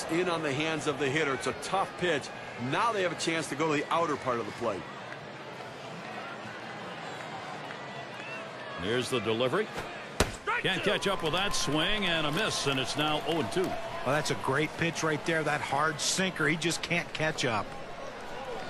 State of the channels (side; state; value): both; identical; correlation 1.00